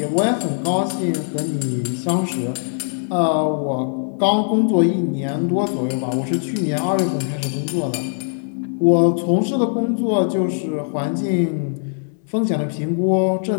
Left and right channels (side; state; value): right; silent; 64 dB below the other